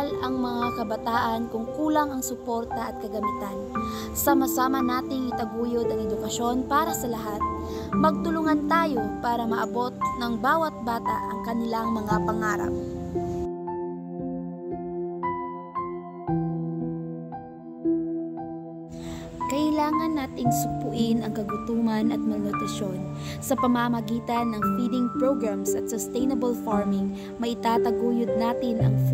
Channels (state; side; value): identical; both; correlation 1.00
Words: ang mga kabataan kung kulang ang suporta at kagamitan? Sama-sama nating itaguyod ang edukasyon para sa lahat. Magtulungan tayo para maabot ng bawat bata ang kanilang mga pangarap. Kailangan nating supuin ang kagutuman at malnutrisyon. Sa pamamagitan ng feeding programs at sustainable farming, maitataguyod natin ang